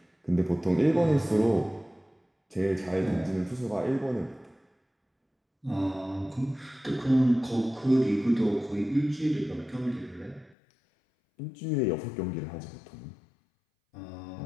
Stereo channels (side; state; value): right; drops out; at 10.6 s